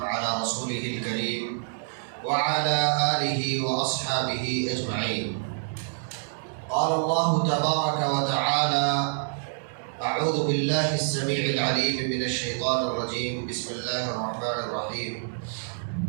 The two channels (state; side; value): silent; left; digital silence